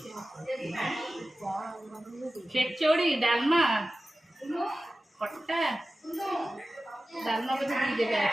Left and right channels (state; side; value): normal; both; correlation 0.95